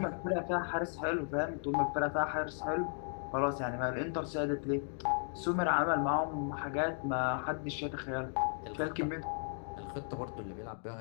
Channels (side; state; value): right; silent; digital silence